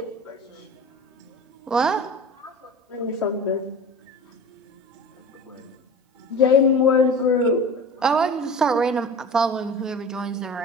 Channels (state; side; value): normal; both; correlation 0.36